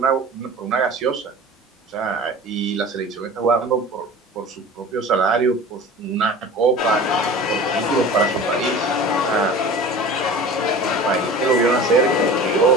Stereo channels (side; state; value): both; normal; correlation 0.38